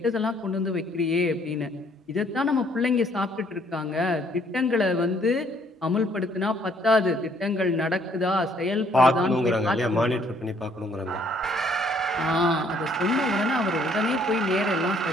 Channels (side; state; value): both; normal; correlation 0.64